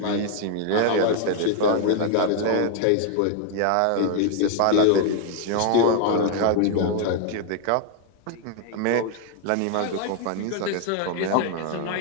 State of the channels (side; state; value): both; different; correlation 0.00